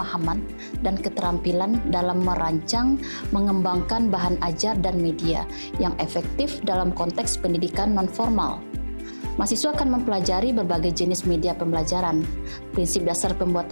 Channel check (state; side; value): inverted; both; correlation -1.00